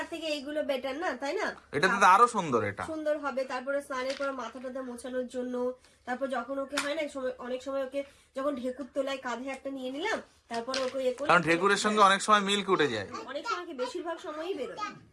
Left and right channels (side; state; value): both; identical; correlation 1.00